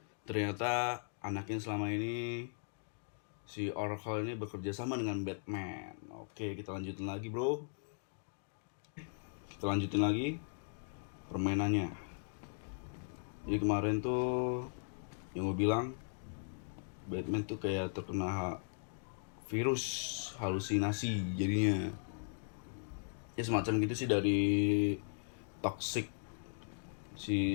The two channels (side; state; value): right; silent; digital silence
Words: ternyata anaknya selama ini si Oracle ini bekerja sama dengan Batman. Oke, kita lanjutin lagi, bro. Kita lanjutin lagi permainannya. Jadi kemarin tuh yang gue bilang Batman tuh kayak terkena virus halusinasi jadinya. Ya semacam gitu sih dari toxic si